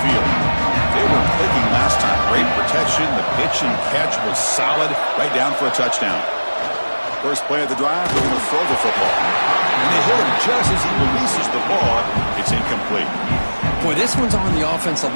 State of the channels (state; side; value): inverted; both; correlation -1.00